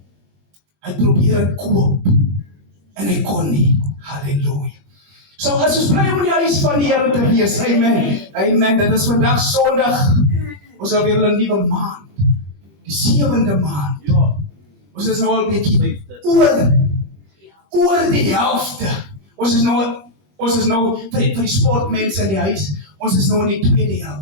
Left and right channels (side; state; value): left; late; 20 ms